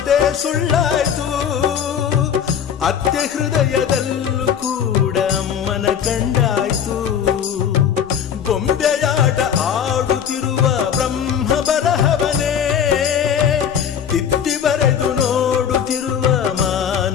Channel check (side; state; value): right; quieter; 8.3 dB